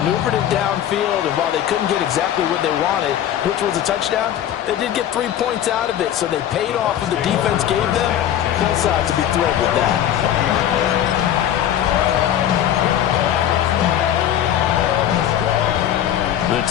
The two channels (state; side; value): quieter; right; 10.9 dB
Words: it downfield, and while they couldn't get exactly what they wanted, which was a touchdown, they did get 3 points out of it, so they paid off what the defense gave them. Both sides to be thrilled with that. The